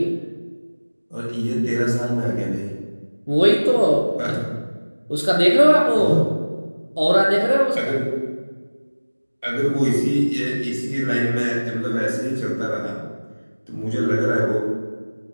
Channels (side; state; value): both; inverted; correlation -1.00